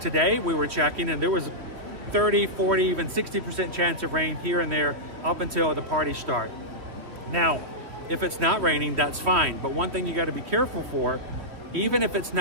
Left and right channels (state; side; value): late; left; 3.1 ms